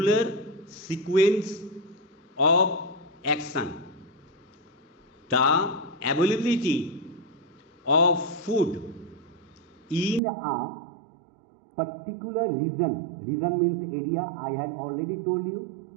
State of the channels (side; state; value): left; drops out; at 10.2 s